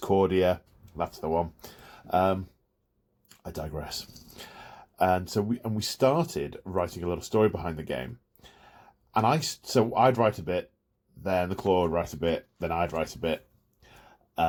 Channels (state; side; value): identical; both; correlation 1.00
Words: That's the one. I digress. And so we started writing a little story behind the game. And I'd write a bit, then the Claw would write a bit, then I'd write a bit.